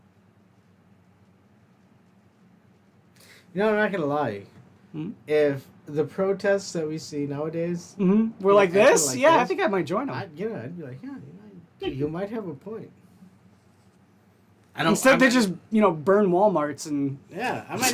know, I'm not gonna lie. Hmm? If the protests that we see nowadays, We're like acting this? like Yeah, I this, think I might join them. I'd be like, yeah, you might have a point. I Instead, they just burn WalMarts and Yeah, I might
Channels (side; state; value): both; identical; correlation 1.00